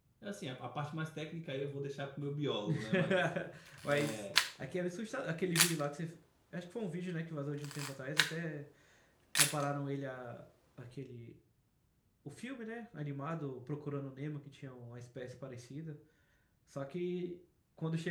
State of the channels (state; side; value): identical; both; correlation 1.00